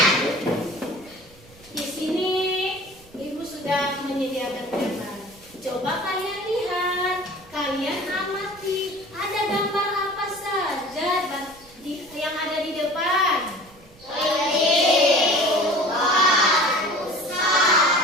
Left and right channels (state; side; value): noise; right; rumble, 25 dB below the sound